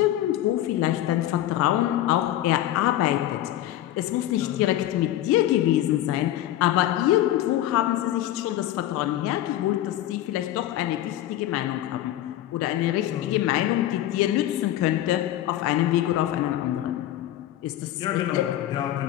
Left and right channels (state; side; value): quieter; right; 13.4 dB